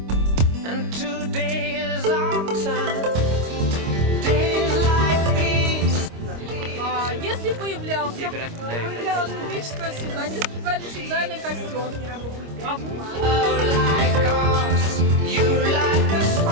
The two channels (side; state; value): left; late; 25 ms